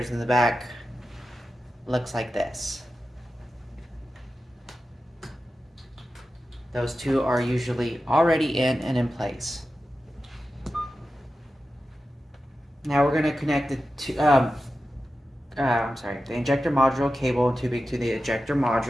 in the back looks like this. Those two are usually already in and in place. Now we're going to connect the injector module cable and tubing to the ejector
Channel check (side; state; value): both; normal; correlation 0.92